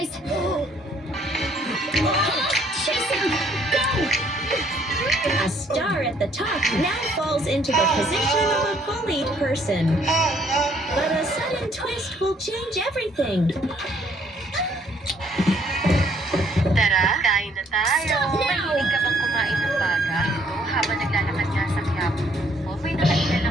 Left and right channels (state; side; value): normal; both; correlation 0.65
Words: Jason, go! A star at the top now falls into the position of a bullied person. But a sudden twist will change everything. Tara, kain na tayo. Stop now! Mahilig ka bang kumain ng baga? Ito, habang naglalakad nga sa Quiapo ko, may nakailan